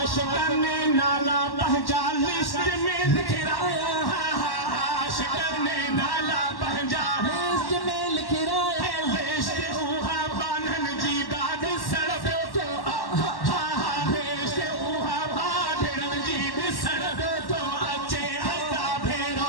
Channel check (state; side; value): late; right; 1.1 ms